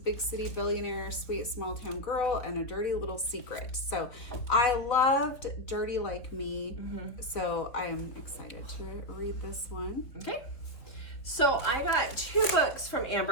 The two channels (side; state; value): right; late; 3.7 ms